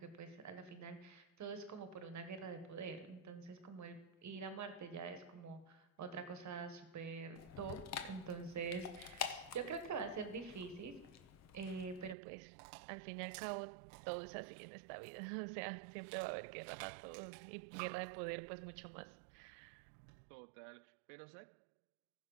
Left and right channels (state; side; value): drops out; left; at 12.2 s